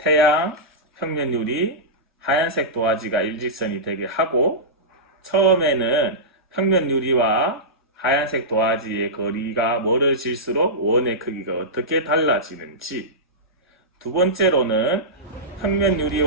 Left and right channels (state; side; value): normal; both; correlation -0.15